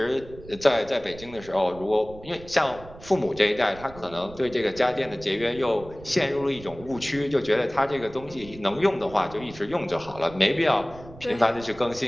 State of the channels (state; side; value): noise; right; rumble, 18 dB below the sound